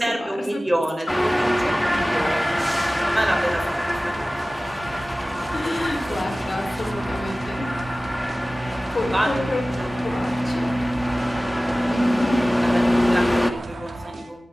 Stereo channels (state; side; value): normal; both; correlation 0.97